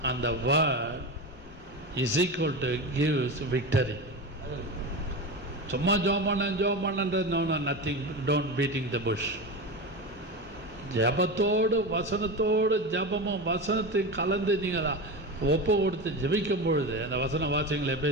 and the word is equal to gives victory. சும்மா ஜெபம் பண்ணன்றது no nothing, don't beating the bush. ஜபத்தோடு வசனத்தோடு ஜபமும் வசனத்தையும் கலந்து நீங்கள் ஒப்பு கொடுத்து ஜெபிக்கும் பொழுது அந்த வசனம் வாசிங்களே.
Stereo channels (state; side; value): normal; both; correlation 0.22